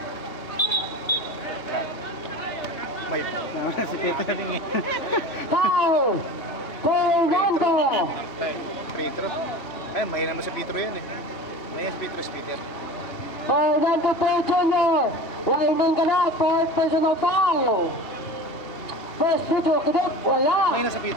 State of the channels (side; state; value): right; late; 3.1 ms